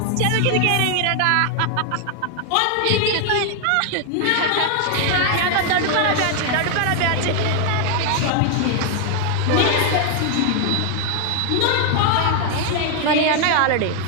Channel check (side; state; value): both; different; correlation 0.00